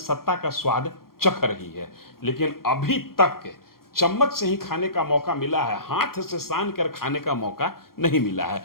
का स्वाद चख रही है, लेकिन अभी तक चम्मच से ही खाने का मौका मिला है, हाथ से सान कर खाने का मौका नहीं मिला है।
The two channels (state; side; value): late; right; 0.92 ms